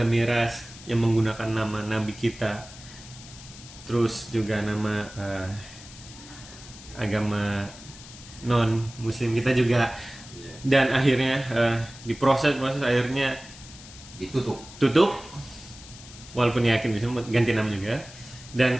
miras yang menggunakan nama nabi kita, terus juga nama agama non muslim kita juga, dan akhirnya diproses akhirnya tutup walaupun yakin bisa ganti nama juga.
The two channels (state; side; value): noise; left; hiss, 17 dB below the sound